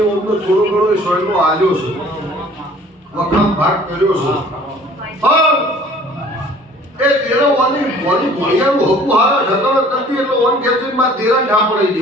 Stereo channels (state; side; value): normal; both; correlation 0.51